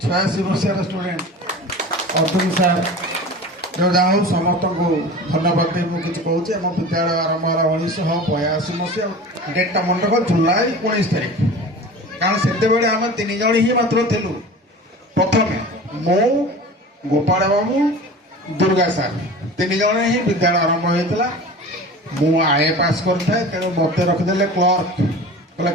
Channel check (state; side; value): normal; both; correlation 0.36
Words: 86 ମସିହାର ଷ୍ଟୁଡେଣ୍ଟ ଅର୍ଜୁନ ସାର୍ ଯାହା ହଉ ସମସ୍ତଙ୍କୁ ଧନ୍ୟବାଦ ଦେଇ ମୁଁ କିଛି କହୁଛି। ଆମ ବିଦ୍ୟାଳୟ ଆରମ୍ଭ ହେଲା 1982 ମସିହା ଡେଟ୍ଟା ମନେ ରଖ ଜୁଲାଇ 19 ତାରିଖ କାରଣ ସେତେବେଳେ ଆମେ 3 ଜଣ ହିଁ ମାତ୍ର ଥିଲୁ। ପ୍ରଥମେ ମୁଁ ଗୋପାଳ ବାବୁ ଦୁର୍ଗା ସାର୍ 3 ଜଣ ହିଁ ବିଦ୍ୟାଳୟ ଆରମ୍ଭ ହୋଇଥିଲା। ମୁଁ ଆଏ ପାସ୍ କରିଥାଏ ତେଣୁ ମୋତେ ରଖିଦେଲେ କ୍ଲର୍କ କହିଲା